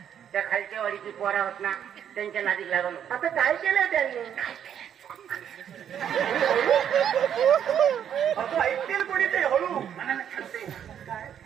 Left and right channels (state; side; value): quieter; left; 9.2 dB